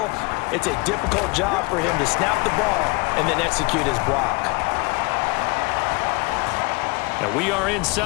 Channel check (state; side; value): quieter; right; 27.5 dB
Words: It's a difficult job for him to snap the ball and then execute his block. And we are